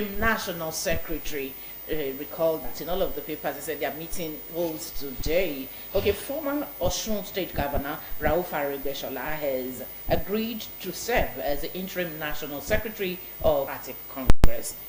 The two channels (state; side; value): identical; both; correlation 1.00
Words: national secretary. Recall that in all of the papers they said their meeting holds today. Okay, former Osun State Governor Rauf Aregbesola has agreed to serve as the interim national secretary of Democratic Congress.